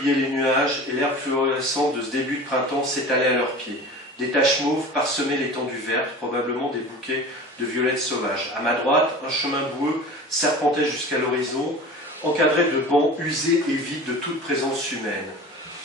les nuages et l'herbe fluorescente de ce début de printemps s'étalait à leurs pieds. Des taches mauves parsemaient l'étendue verte, probablement des bouquets de violettes sauvages. À ma droite, un chemin boueux serpentait jusqu'à l'horizon, encadré de bancs usés et vides de toute présence humaine.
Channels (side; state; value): both; normal; correlation 0.37